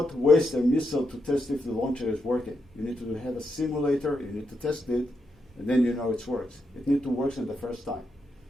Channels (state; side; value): normal; both; correlation 0.83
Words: waste a missile to test if the launcher is working. You need to have a simulator, you need to test it, and then you know it works. It needs to work in the first time.